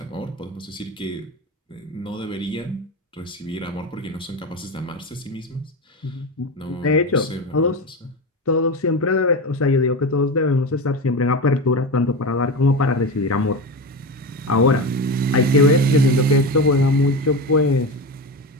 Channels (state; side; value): normal; both; correlation 0.21